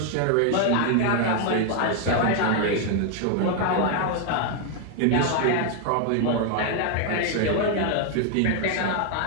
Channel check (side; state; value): both; different; correlation 0.00